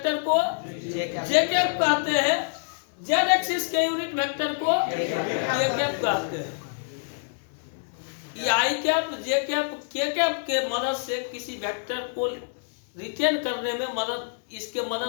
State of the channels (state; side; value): silent; right; digital silence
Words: को जे कैप कहते हैं, जेड एक्सिस के यूनिट वेक्टर को के कैप कहते हैं। ये आई cap, J cap, K cap के मदद से किसी वेक्टर को रिटेन करने में मदद, इसके